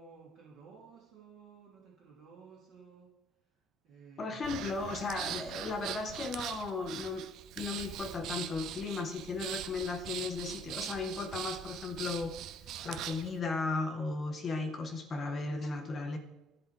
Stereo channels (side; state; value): both; normal; correlation 0.64